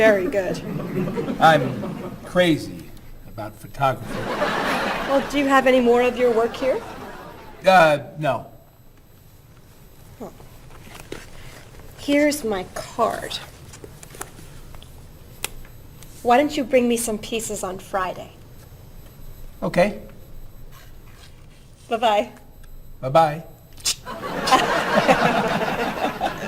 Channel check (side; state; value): both; identical; correlation 1.00